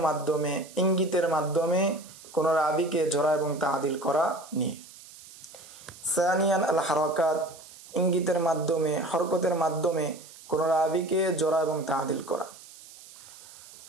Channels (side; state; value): right; noise; hiss, 19 dB below the sound